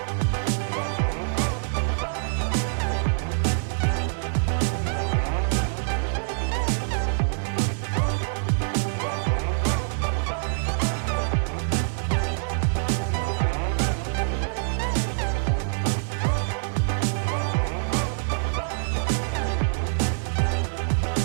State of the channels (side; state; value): left; silent; digital silence